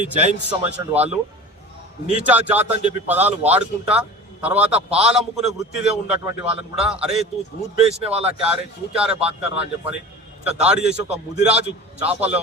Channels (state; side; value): normal; both; correlation 0.37